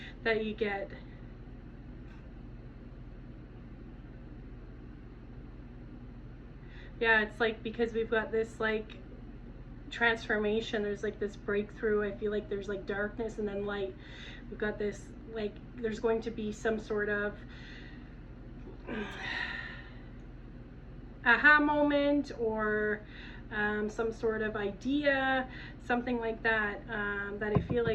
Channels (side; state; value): both; identical; correlation 1.00